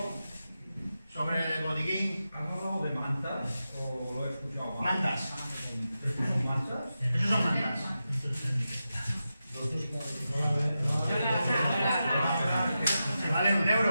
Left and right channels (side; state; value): both; inverted; correlation -0.91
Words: ¿Sobre el botiquín? ¿Has hablado de mantas o lo he escuchado? Mantas. ¿Estos son mantas? Esos son mantas. Se vale